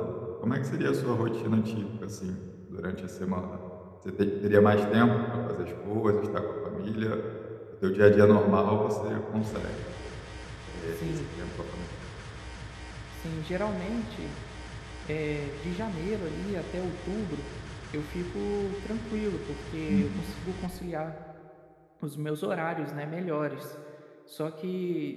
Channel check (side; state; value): both; identical; correlation 1.00